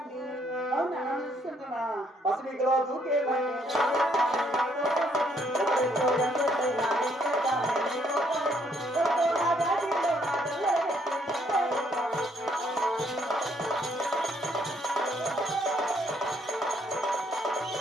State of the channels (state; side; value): normal; both; correlation 0.69